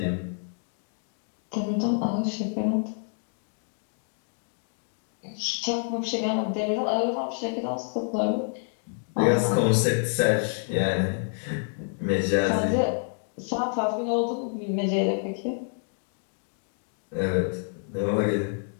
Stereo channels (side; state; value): right; silent; 59 dB below the other